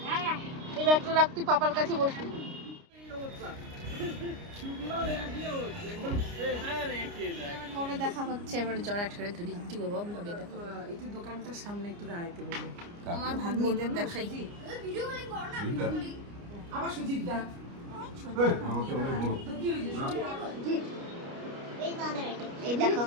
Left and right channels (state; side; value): late; left; 29 ms